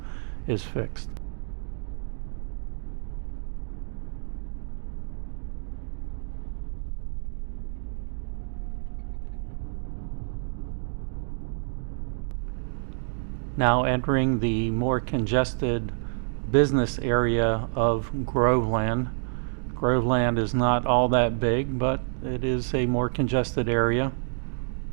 fixed. Now entering the more congested business area of Groveland. Groveland is not all that big, but it is a more congested area.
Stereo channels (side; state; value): left; silent; digital silence